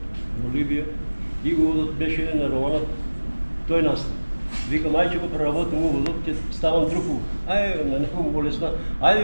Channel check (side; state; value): both; inverted; correlation -1.00